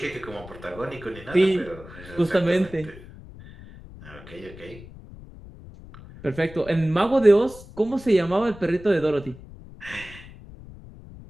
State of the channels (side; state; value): left; noise; rumble, 17 dB below the sound